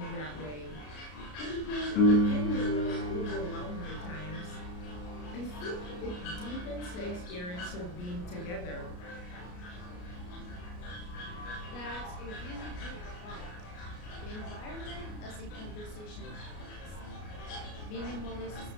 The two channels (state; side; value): late; right; 33 ms